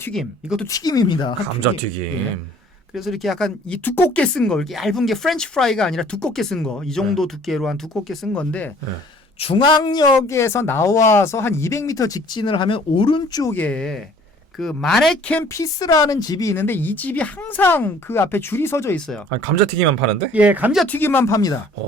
이것도 튀김입니다. 감자튀김. 예. 그래서 이렇게 약간 이 두껍게 쓴 거, 이렇게 얇은 게 프렌치 프라이가 아니라 두껍게 쓴 거, 이 정도 두께로 한 두껍게 쓴 건데 중앙역에서 나와서 한 200m 직진을 하면 오른쪽에 그 마네켄 피스라는 집이 있는데 이 집이 항상 그 앞에 줄이 서져 있어요. 아니, 감자튀김만 파는데? 예, 감자튀김만 팝니다.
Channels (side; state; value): both; normal; correlation 0.55